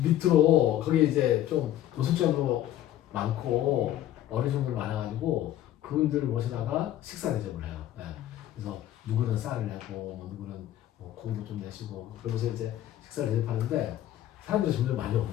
밑으로 거기 이제 좀 노숙자로 많고 어르신들 많아가지고 그분들을 모시다가 식사 대접을 해요. 네. 그래서 누구는 쌀을 내고 누구는 고기도 좀 내시고 그러면서 이제 식사를 대접하는데 사람들이 점점 많이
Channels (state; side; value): quieter; right; 12.6 dB